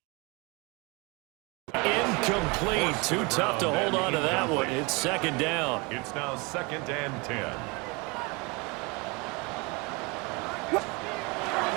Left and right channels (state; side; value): quieter; left; 28.1 dB